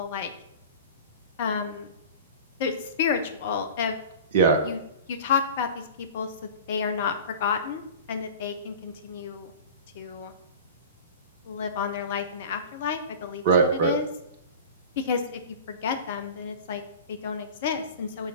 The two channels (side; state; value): both; inverted; correlation -0.36